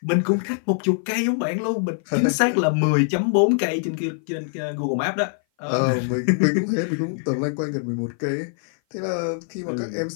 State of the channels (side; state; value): right; silent; 57 dB below the other